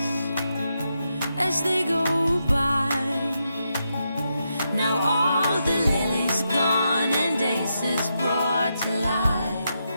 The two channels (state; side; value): inverted; both; correlation -0.84